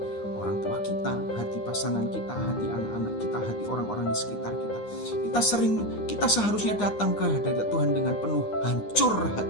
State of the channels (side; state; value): right; late; 9.8 ms